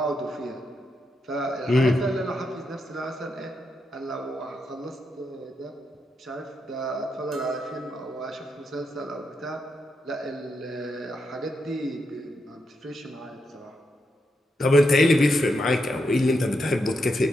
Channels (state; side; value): normal; both; correlation 0.83